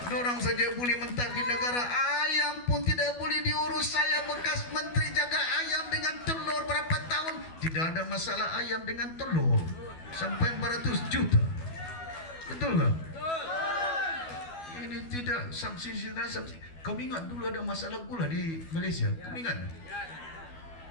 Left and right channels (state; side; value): late; right; 12 ms